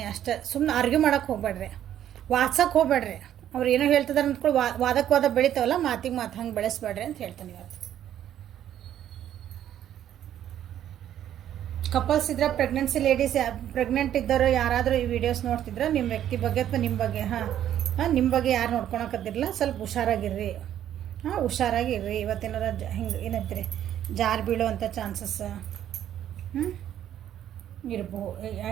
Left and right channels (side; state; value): left; quieter; 11.0 dB